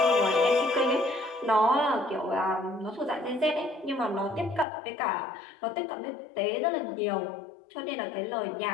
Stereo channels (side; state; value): right; drops out; at 4.7 s